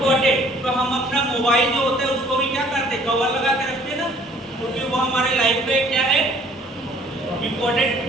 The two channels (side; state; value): both; normal; correlation 0.57